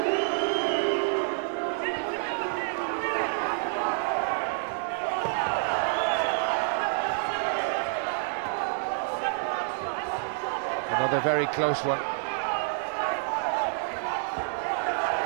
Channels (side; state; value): left; silent; digital silence